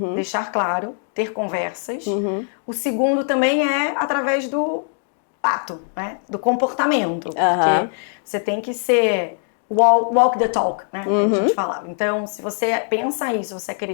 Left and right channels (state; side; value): silent; right; 64 dB below the other